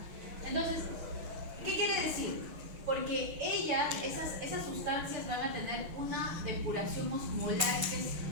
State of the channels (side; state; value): left; late; 6.4 ms